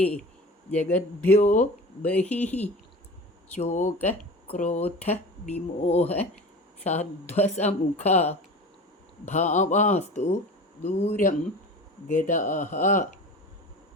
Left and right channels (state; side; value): normal; both; correlation 0.35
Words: ജഗദ്ഭ്യോ ബഹിഃ. ശോക ക്രോധ വിമോഹ സാധ്വസമുഖ ഭാവാസ്തു ദൂരം ഗതാഃ.